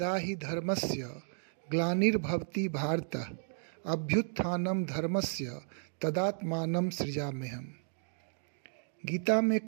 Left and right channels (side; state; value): left; silent; digital silence